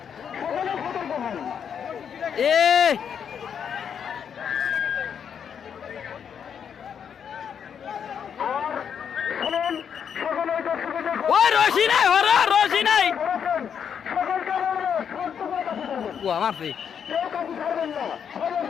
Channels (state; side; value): quieter; right; 7.7 dB